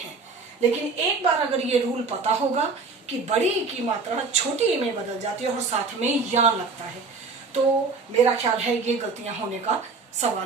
लेकिन एक बार अगर ये रूल पता होगा कि बड़ी ई की मात्रा छोटी ई में बदल जाती है और साथ में या लगता है, तो मेरा ख्याल है ये गलतियां होने का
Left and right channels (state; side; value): quieter; left; 4.3 dB